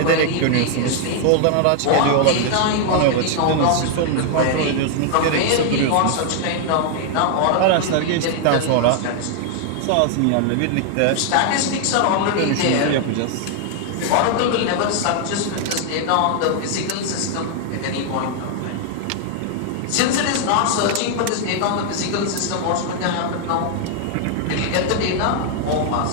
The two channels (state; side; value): different; both; correlation 0.00